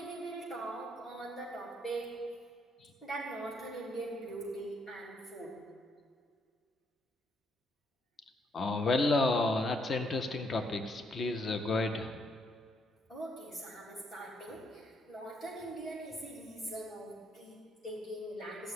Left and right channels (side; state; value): both; normal; correlation 0.73